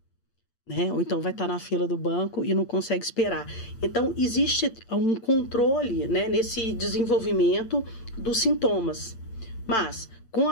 Né? Ou então vai estar na fila do banco e não consegue esperar. Então, existe um controle, né, nesse desenvolvimento dos sintomas. Mas, com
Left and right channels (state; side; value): late; right; 8.2 ms